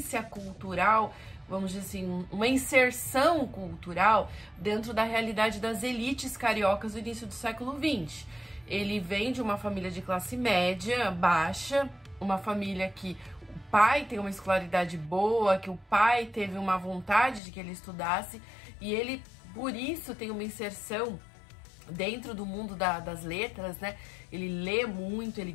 cultural, vamos dizer assim, uma inserção cultural dentro da realidade das elites cariocas do início do século XX. Ele vem de uma família de classe média, baixa, uma família que o pai tem uma escolaridade boa, que o pai teve uma vontade de que ele estudasse, e ele, por isso, tem uma inserção dentro do mundo das letras, né? Ele lê muito, ele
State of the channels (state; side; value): drops out; right; at 17.4 s